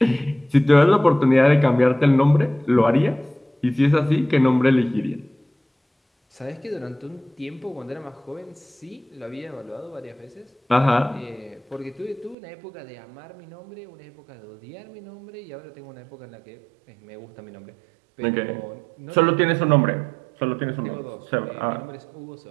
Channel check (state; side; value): drops out; left; at 12.4 s